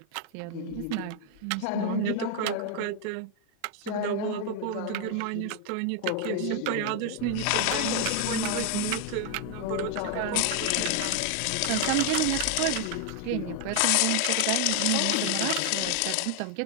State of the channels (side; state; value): both; different; correlation 0.00